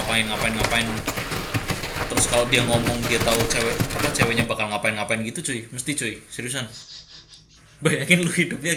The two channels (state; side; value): identical; both; correlation 1.00